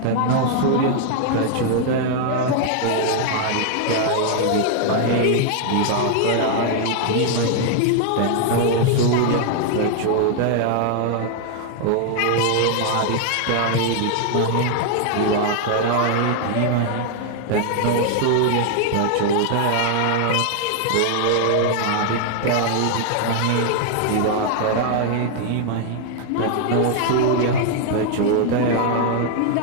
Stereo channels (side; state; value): both; different; correlation 0.00